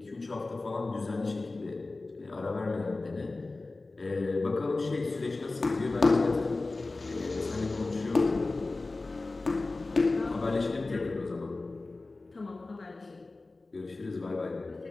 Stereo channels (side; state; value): right; quieter; 3.3 dB